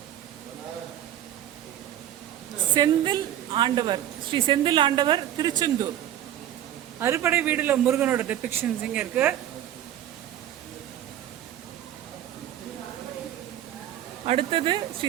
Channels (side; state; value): left; quieter; 11.6 dB